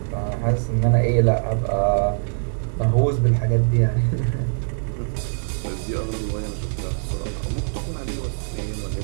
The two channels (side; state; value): left; silent; digital silence